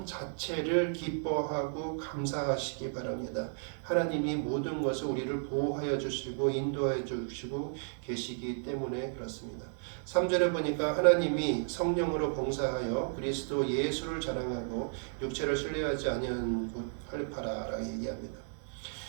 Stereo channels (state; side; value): silent; left; digital silence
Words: 자체를 기뻐하고 감사하시기 바랍니다. 하나님이 모든 것을 우리를 보호하여 주시고 인도하여 주시고 계시기 때문에 그렇습니다. 3절에 보니까 하나님이 성령으로 봉사하여 그리스도 예수를 자랑하고 육체를 신뢰하지 아니한 곳 할례파라라고 얘기합니다.